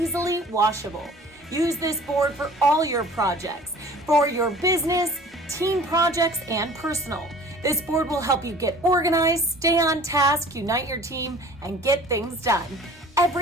washable. Use this board for all your projects, for your business, team projects, and personal. This board will help you get organized, stay on task, unite your team, and get things done.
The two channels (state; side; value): normal; both; correlation 0.47